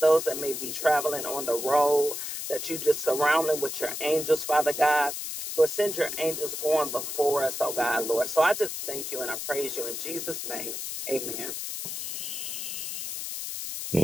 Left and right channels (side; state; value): left; noise; hiss, 5 dB below the sound